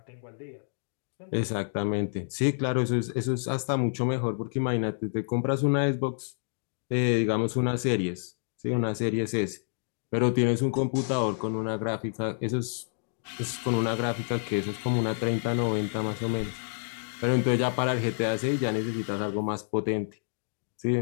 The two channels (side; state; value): right; silent; digital silence